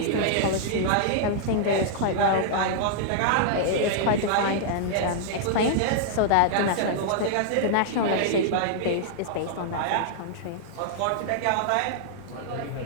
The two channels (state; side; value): different; both; correlation -0.01